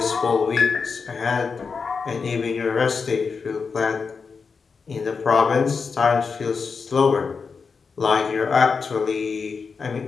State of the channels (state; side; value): quieter; right; 5.2 dB